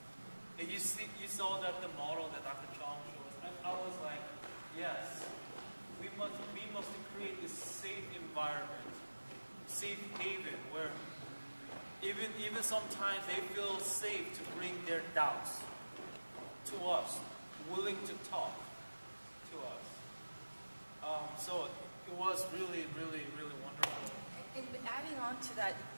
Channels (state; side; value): inverted; both; correlation -1.00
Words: And you saw that the model that Dr. Chong showed us. I was like, yes, we must create this safe environment, safe haven, where even sometimes they feel safe to bring their doubts to us, willing to talk to us. So it was really, really, really wonderful. And adding on to that,